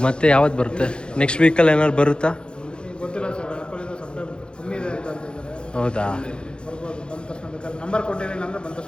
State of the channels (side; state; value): right; late; 0.052 ms